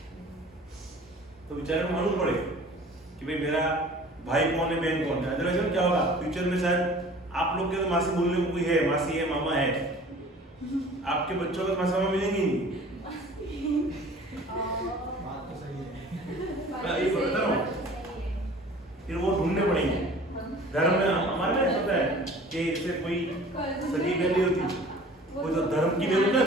तो बेचारे को मालूम पड़े कि भाई मेरा भाई कौन है बहन कौन है अदरवाइज क्या होगा फ्यूचर में शायद आप लोग के तो मासी बोलने को कोई है मासी है मामा है आपके बच्चों को मासी मामा मिलेंगे नहीं मैं ये बता रहा हूँ फिर वो ढूंढने पड़ेंगे धर्म में हमारे में पता है कि जैसे कोई सगी बहन नहीं होती कोई तो धर्म की बहन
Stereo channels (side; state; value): both; normal; correlation 0.46